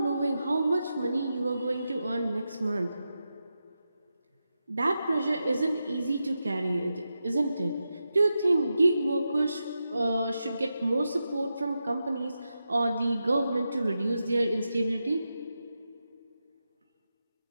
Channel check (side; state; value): both; inverted; correlation -0.89